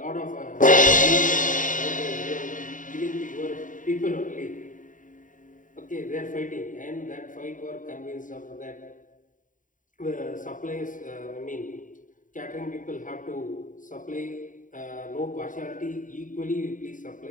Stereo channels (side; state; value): right; late; 0.38 ms